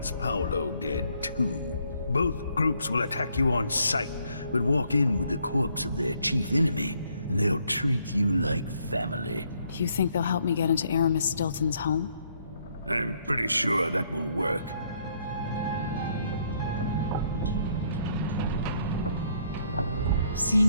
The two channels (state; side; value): inverted; both; correlation -0.69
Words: Paolo dead too. Both groups will attack you on sight, but walk in with the corpse of their chief enemy, and they'll treat you like family. You think they'll help me get into Aramis Stilton's home? I'm pretty sure that will work.